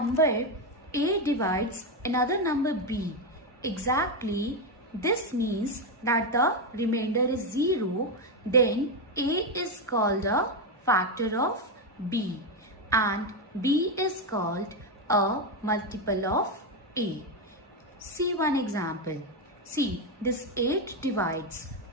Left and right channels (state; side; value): normal; both; correlation 0.08